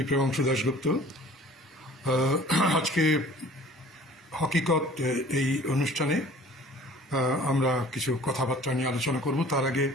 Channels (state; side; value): normal; both; correlation 0.49